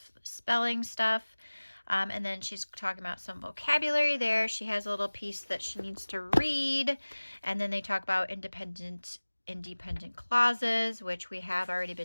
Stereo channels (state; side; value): inverted; both; correlation -1.00